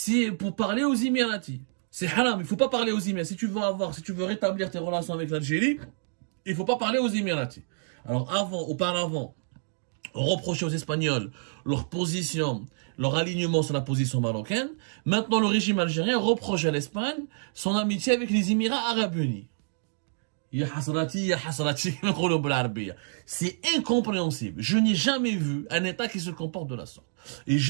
pour parler aux Émiratis. C'est haram, il faut pas parler aux Émiratis. Si tu veux rétablir tes relations avec l'Algérie, il faut pas parler aux Émiratis. Alors auparavant, on reprochait aux Espagnols leur position, leur alignement sur la position marocaine. Maintenant, le régime algérien reproche à l'Espagne son amitié avec les Émirats Arabes Unis. C'est incompréhensible. Je n'ai jamais vu un État qui se comporte de la sorte. Et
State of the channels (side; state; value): left; silent; digital silence